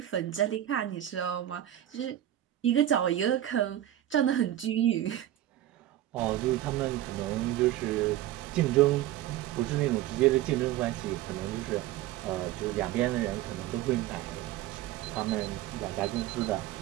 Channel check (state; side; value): quieter; left; 13.1 dB